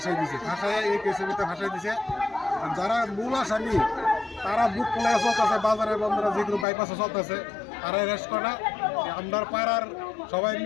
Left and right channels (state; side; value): drops out; right; at 6.7 s